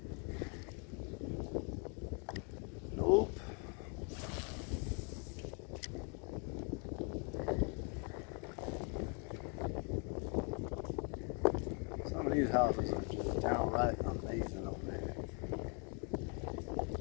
Nope. Some of these houses are just downright amazing over there.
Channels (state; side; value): quieter; right; 37.5 dB